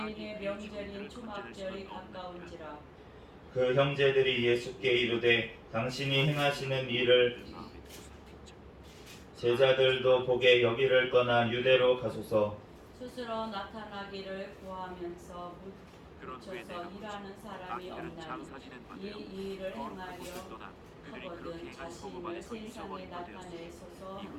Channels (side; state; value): both; identical; correlation 1.00